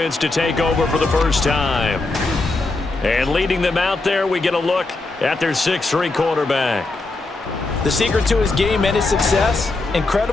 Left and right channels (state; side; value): quieter; right; 3.3 dB